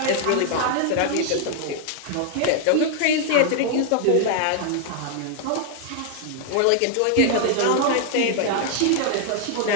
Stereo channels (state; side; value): different; both; correlation 0.00